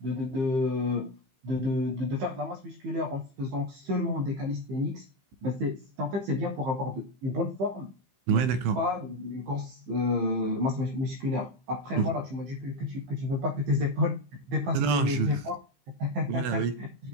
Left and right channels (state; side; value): late; left; 15 ms